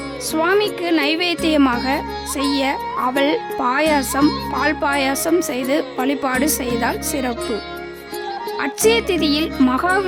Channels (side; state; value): both; identical; correlation 1.00